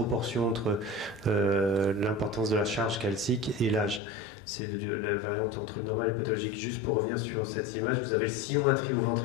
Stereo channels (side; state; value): right; drops out; at 4.0 s